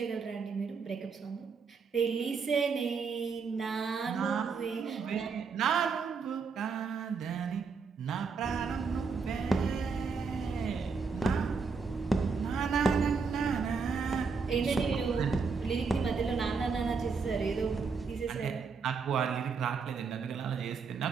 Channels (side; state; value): left; quieter; 5.1 dB